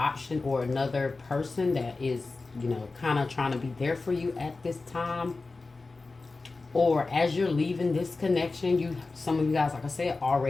or another person that is, you know, kind of trying to be there for you at this time. Or as you're leaving this connection, some of you guys, like I said,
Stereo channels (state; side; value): quieter; right; 3.7 dB